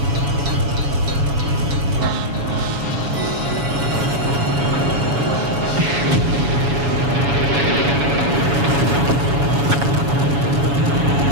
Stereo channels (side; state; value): left; late; 7.1 ms